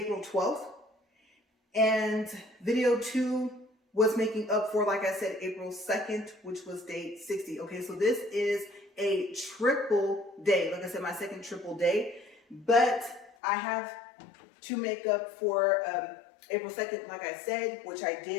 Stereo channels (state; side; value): drops out; right; at 13.3 s